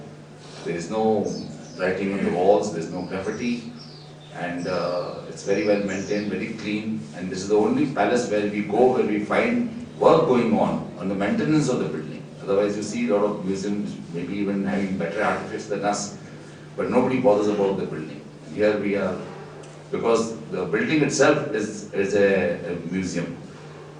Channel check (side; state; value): both; identical; correlation 1.00